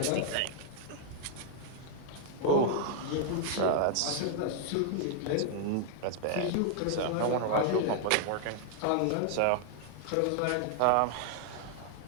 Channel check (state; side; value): different; both; correlation -0.01